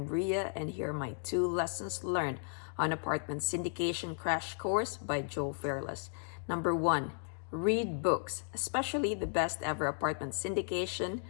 Ria, and here are my 2 lessons learned on apartment syndication crash course by Joe Fairless. Number 1, read books, especially the best ever apartment syndication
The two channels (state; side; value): silent; right; 55 dB below the other